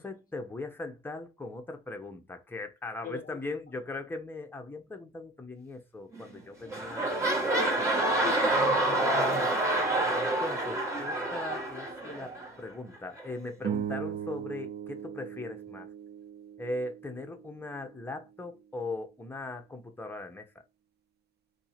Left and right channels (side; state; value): both; normal; correlation 0.42